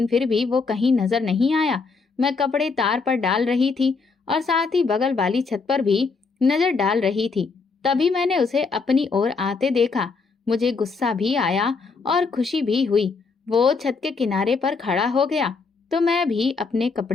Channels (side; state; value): right; quieter; 4.5 dB